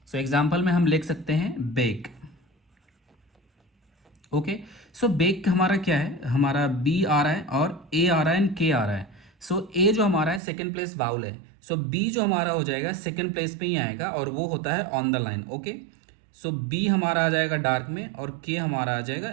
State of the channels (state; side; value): drops out; left; at 10.4 s